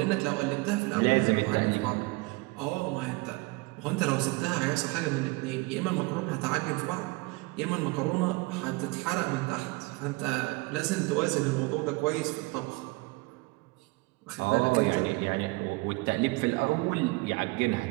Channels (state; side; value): quieter; left; 24.9 dB